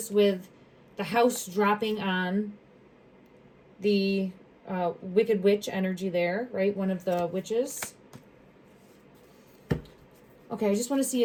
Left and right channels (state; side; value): identical; both; correlation 1.00